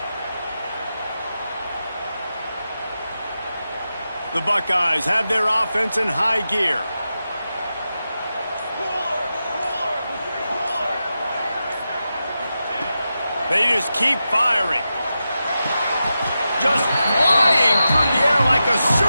The Buckeyes have their offense in high gear. They just keep firing. Just flying through the air like a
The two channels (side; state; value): both; inverted; correlation -0.90